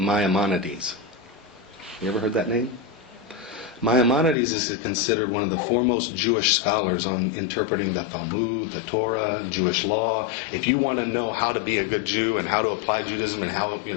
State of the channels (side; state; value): right; drops out; at 4.4 s